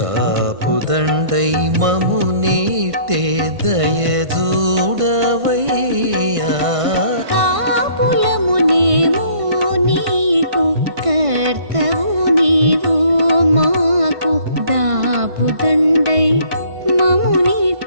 మము నీటే దయ చూడవయ్యా. కాపులమునేము నీకు కర్తవు నీవు మాకు దాపుదండై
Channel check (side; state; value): left; late; 1.5 ms